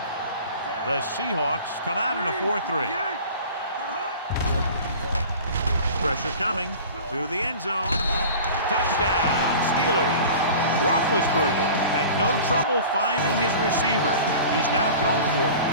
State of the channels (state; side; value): inverted; both; correlation -0.40